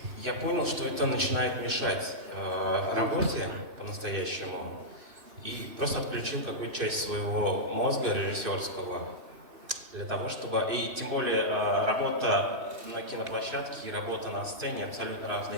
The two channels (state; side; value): late; left; 2.6 ms